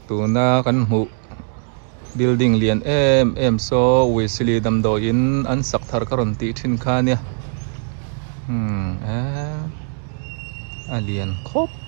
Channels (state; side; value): silent; left; 60 dB below the other